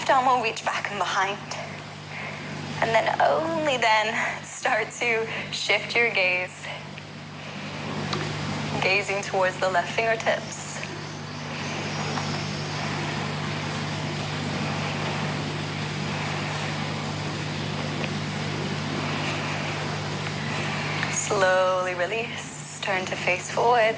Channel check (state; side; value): identical; both; correlation 1.00